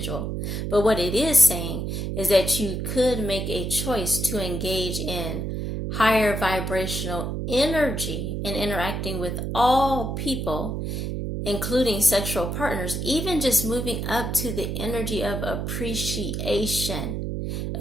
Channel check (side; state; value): right; noise; hum, 3 dB below the sound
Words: But what it is saying is that you could make a choice to engage in higher vibrational energy in interacting with all people, including sexual partners, even just moving up to the energy of appreciation.